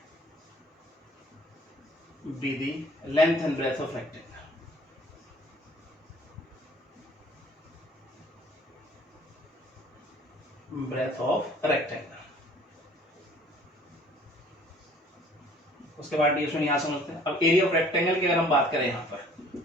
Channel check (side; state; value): both; normal; correlation 0.54